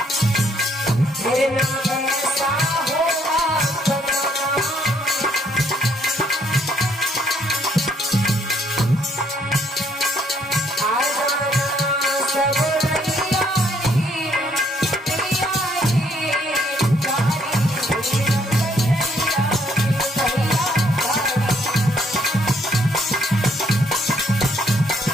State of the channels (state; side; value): normal; both; correlation 0.67